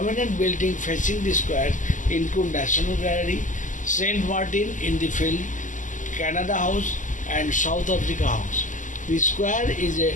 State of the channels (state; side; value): late; right; 0.37 ms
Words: buildings facing the square include National Gallery, St. Martin in the Field, Canada House and South Africa House. The square is a